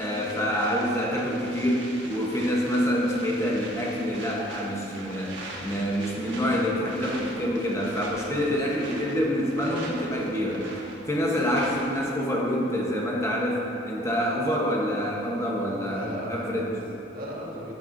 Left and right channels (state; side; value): normal; both; correlation 0.57